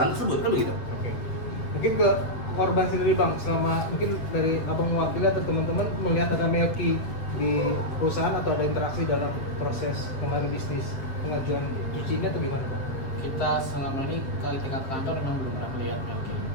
tersebut, kan begitu? Oke. Mungkin ke korban sendiri Bang, selama mungkin dari abang mewakili atau teman-teman melihat ada Melki di perusahaan atau ada interaksi dalam proses pengaruh bisnis pengajuan cuci ini atau gimana Bang? Kita selama ini ke tingkat kantor memang belum pernah melihat Melki.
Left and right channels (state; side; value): late; right; 7.7 ms